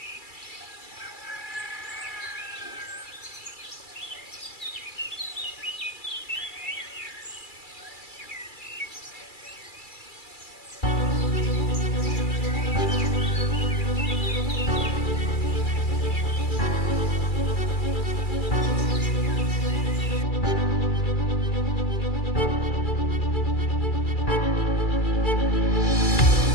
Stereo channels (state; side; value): late; right; 2.3 ms